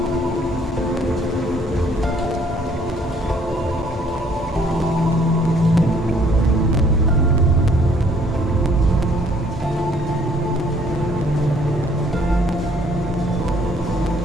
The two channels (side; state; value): both; normal; correlation 0.62